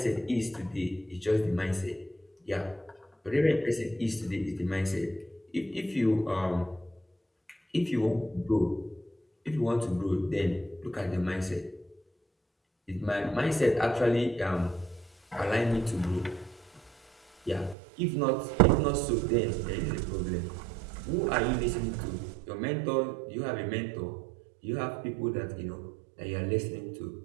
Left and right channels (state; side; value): drops out; left; at 17.8 s